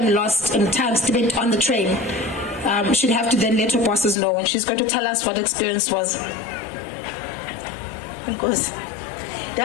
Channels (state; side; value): drops out; right; at 4.2 s